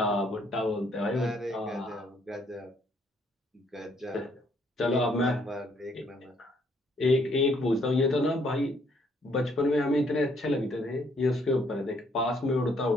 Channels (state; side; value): normal; both; correlation 0.67